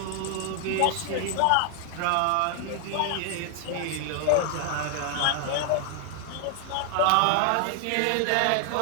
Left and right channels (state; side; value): different; both; correlation 0.00